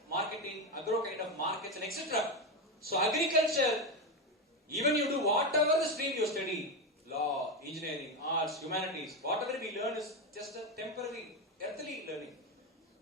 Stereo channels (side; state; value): both; normal; correlation 0.13